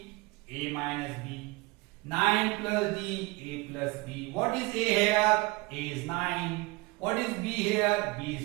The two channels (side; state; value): left; quieter; 23.9 dB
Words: a minus b, 9 plus d a plus b. What is a here? a is 9. What is b here? b